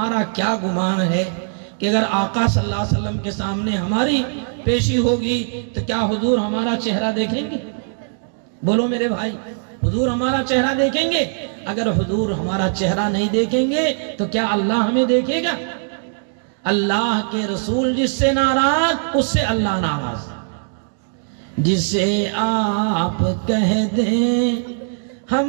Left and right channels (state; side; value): silent; left; digital silence